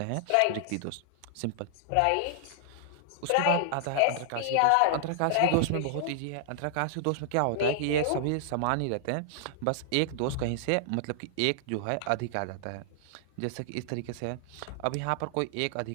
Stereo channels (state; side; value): different; both; correlation 0.00